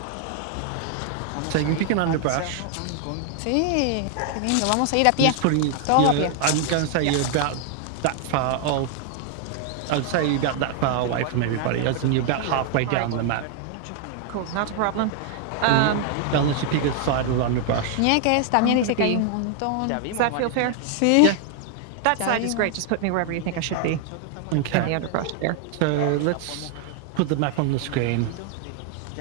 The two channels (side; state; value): both; different; correlation 0.00